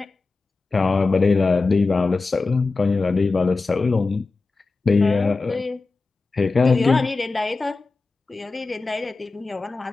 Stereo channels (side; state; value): right; quieter; 3.8 dB